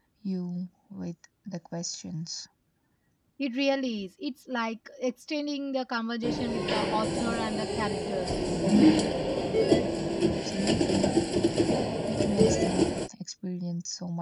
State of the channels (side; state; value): both; identical; correlation 1.00